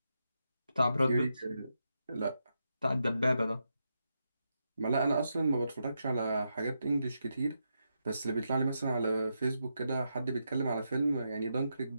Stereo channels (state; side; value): inverted; both; correlation -0.84